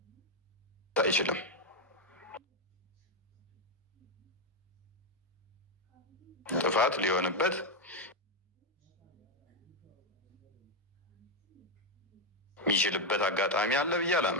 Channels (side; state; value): both; normal; correlation 0.04